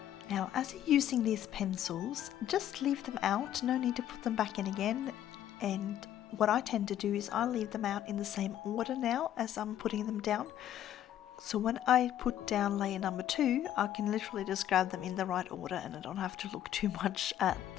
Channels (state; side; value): quieter; right; 11.4 dB